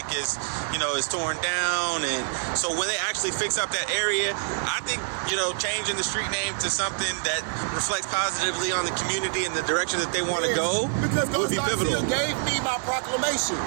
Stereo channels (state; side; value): silent; left; digital silence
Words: is torn down, and so when they actually fix up that area, I think changing the street name to something that reflects positively on the community and the direction that they want to go would be pivotal. Garcia gave me my proclamation.